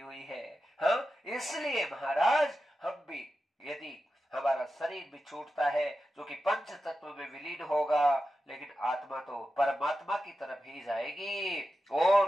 हुई है। हाँ, इसलिए महाराज हम भी, यदि हमारा शरीर भी छूटता है जो कि पंच तत्व में विलीन होगा, लेकिन आत्मा तो परमात्मा की तरफ ही जाएगी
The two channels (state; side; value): normal; both; correlation 0.91